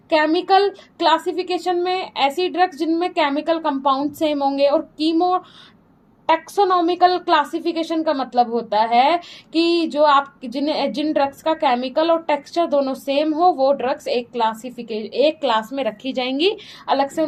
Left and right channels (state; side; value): identical; both; correlation 1.00